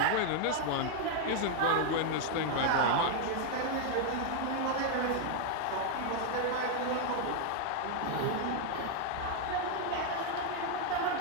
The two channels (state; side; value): different; both; correlation 0.00